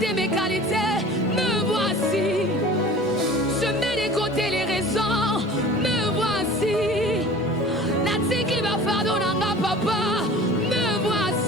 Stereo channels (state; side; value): normal; both; correlation 0.42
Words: mes qualités. Me voici. Je mets de côté les raisons. Me voici. Natiki va fardo nanga papa. Me